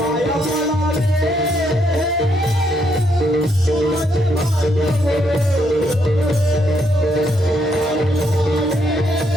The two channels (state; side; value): normal; both; correlation 0.75